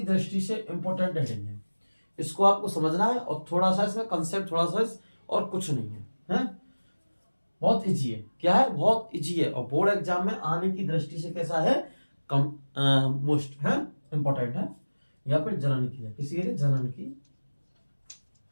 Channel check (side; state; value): both; inverted; correlation -1.00